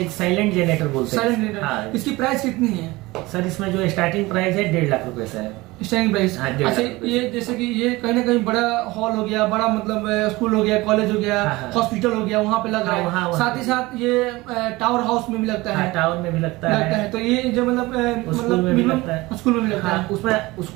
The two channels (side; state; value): left; quieter; 20.9 dB